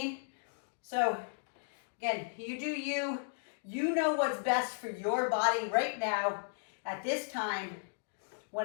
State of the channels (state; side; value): silent; right; digital silence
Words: So again, you do you. You know what's best for your body right now at this time when